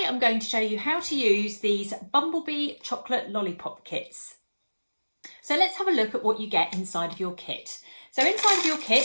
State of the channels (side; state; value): both; inverted; correlation -1.00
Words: I'm going to show you how to use these Bumblebee chocolate lollipop kits. So let's have a look at what you get inside of your kit. So inside of your